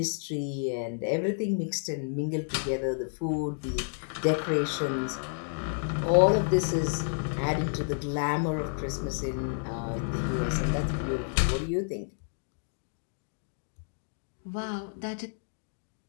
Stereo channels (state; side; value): silent; right; digital silence